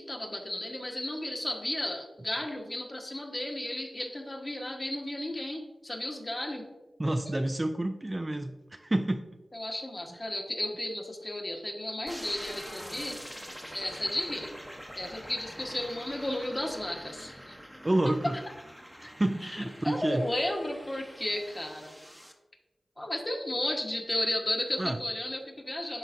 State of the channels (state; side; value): normal; both; correlation 0.97